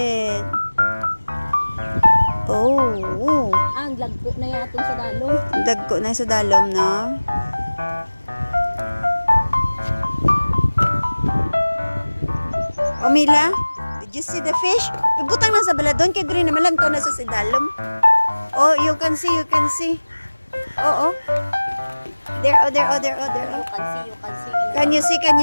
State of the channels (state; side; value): inverted; both; correlation -1.00